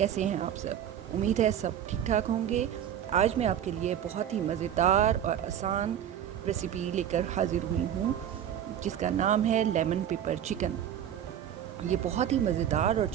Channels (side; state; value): left; quieter; 10.0 dB